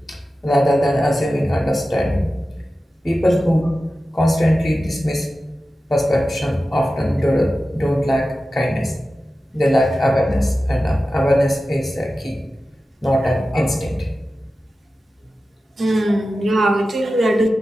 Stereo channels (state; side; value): normal; both; correlation 0.94